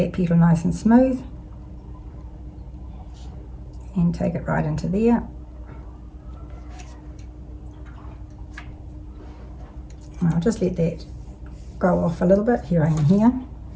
petal nice and smooth. And take it right into there. And I'll just let that go off a little bit. Here I am here. And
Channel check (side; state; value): both; identical; correlation 1.00